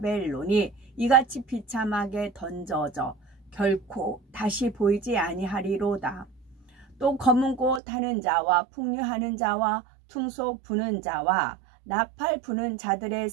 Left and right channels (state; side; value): drops out; left; at 7.8 s